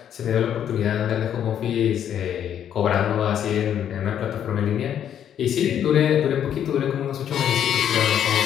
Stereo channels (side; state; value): right; quieter; 9.6 dB